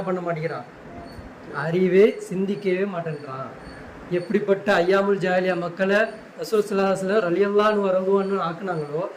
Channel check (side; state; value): both; identical; correlation 1.00